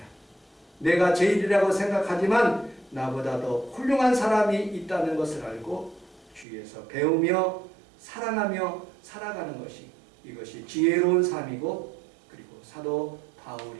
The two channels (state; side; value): drops out; left; at 6.5 s